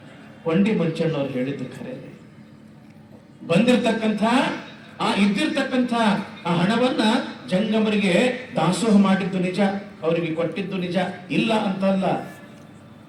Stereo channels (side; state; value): both; identical; correlation 1.00